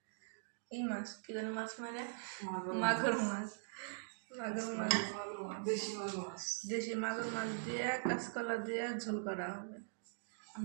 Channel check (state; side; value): silent; left; digital silence